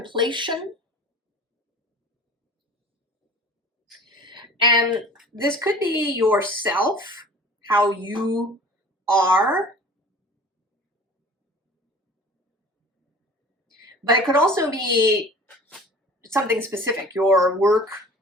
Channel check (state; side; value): normal; both; correlation 0.44